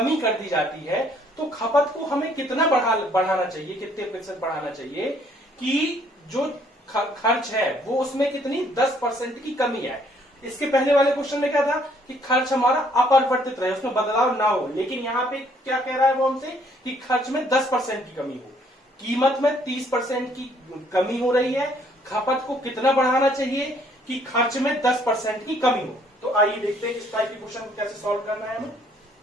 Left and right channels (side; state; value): both; normal; correlation 0.64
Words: कर दी जाती है, तो खपत को हमें कितना बढ़ाना चाहिए, कितने प्रतिशत बढ़ाना चाहिए कि जो खर्च है वो उसमें कितनी 10% की कमी है। इसके पहले वाले क्वेश्चन में क्या था कि खर्च हमारा अपरिवर्तित रहे, उसमें बदलाव ना हो, लेकिन यहाँ पे क्या कह रहा है वो हमसे कि खर्च में 10% की कमी हो, कीमत में 30% की कमी हो रही है, खपत को कितना बढ़ाना चाहिए कि खर्च में 10% की कमी हो। तो आइए देखते हैं इस टाइप के क्वेश्चन को कैसे सॉल्व करना है हमें।